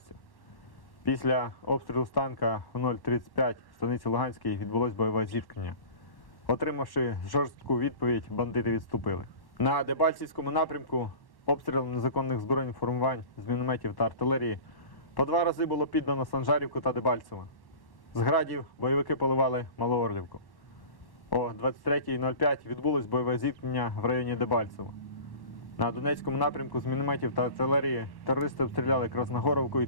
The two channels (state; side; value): late; right; 1.1 ms